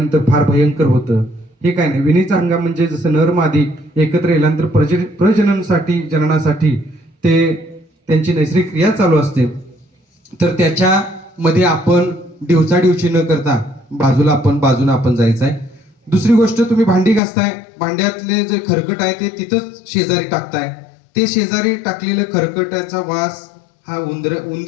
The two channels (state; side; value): drops out; right; at 17.2 s